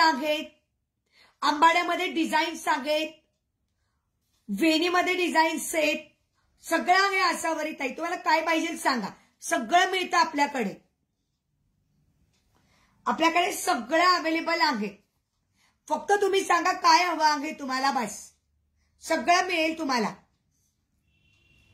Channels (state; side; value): identical; both; correlation 1.00